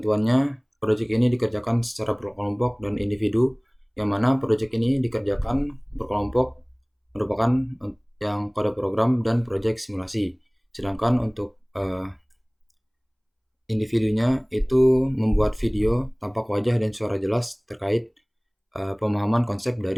proyek ini dikerjakan secara berkelompok dan individu, yang mana proyek ini dikerjakan berkelompok merupakan yang kode program dan proyek simulasi. Sedangkan untuk individunya itu membuat video tampak wajah dan suara jelas terkait pemahaman konsep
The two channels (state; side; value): identical; both; correlation 1.00